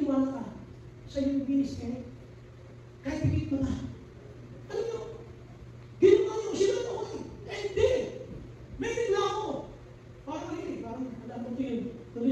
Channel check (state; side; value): identical; both; correlation 1.00